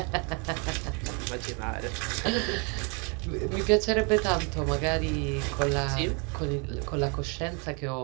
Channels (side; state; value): left; quieter; 34.2 dB